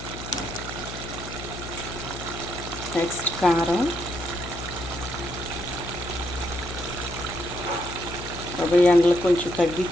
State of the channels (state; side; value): noise; left; hum, 10 dB below the sound